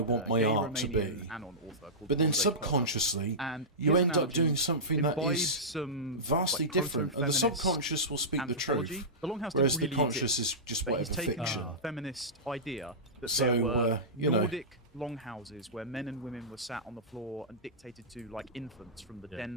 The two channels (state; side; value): normal; both; correlation -0.16